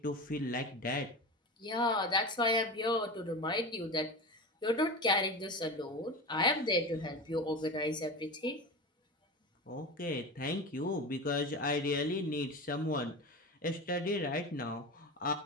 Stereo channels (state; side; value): normal; both; correlation 0.27